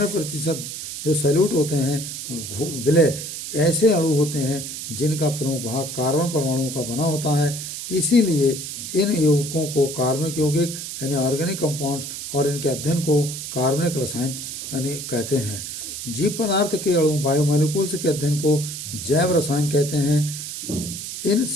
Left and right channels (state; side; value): noise; right; hiss, 7 dB below the sound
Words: जो सैल्यूट होते हैं विलय ऐसे अणु होते हैं जिनका प्रमुख भाग कार्बन परमाणुओं का बना होता है। इसीलिए इन यौगिकों को कार्बनिक यौगिक यानी ऑर्गेनिक कंपाउंड्स और इनके अध्ययन को कार्बनिक रसायन यानी कहते हैं। जीव पदार्थ के अणु बायोमॉलिक्यूल्स के अध्ययन को जैव रसायन कहते हैं। इन